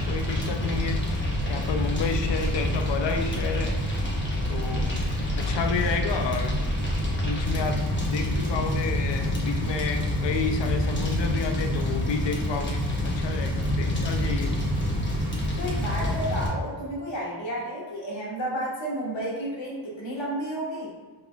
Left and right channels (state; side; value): normal; both; correlation 0.51